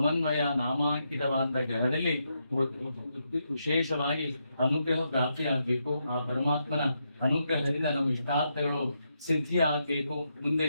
ನಾಮಾಂಕಿತವಾದ ಗ್ರಹದಲ್ಲಿ ವಿಶೇಷವಾಗಿ ಅನುಗ್ರಹ ಪ್ರಾಪ್ತಿಯಾಗಬೇಕು. ಆ ಪರಮಾತ್ಮನ ಅನುಗ್ರಹದಿಂದ ನಮ್ಮ ಇಷ್ಟಾರ್ಥಗಳು ಸಿದ್ಧಿ ಆಗಬೇಕು. ಮುಂದೆ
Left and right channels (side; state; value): both; inverted; correlation -0.82